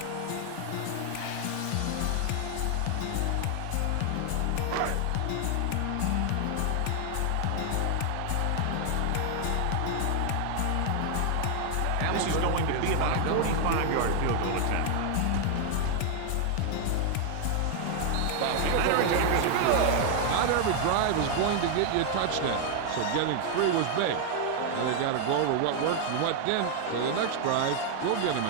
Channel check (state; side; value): different; both; correlation 0.00